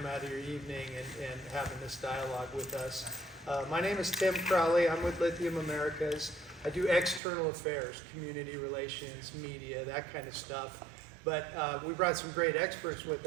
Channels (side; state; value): left; drops out; at 7.2 s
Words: out of your evening and having this dialogue with us. My name is Tim Crowley. I'm with Lithium Americas. I do external affairs, community relations, media, that kind of stuff. But we brought some great experts with